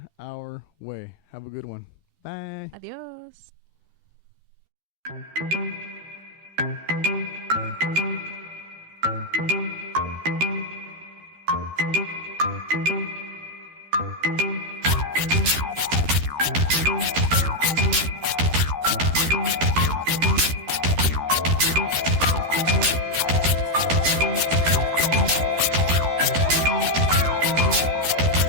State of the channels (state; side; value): late; left; 13 ms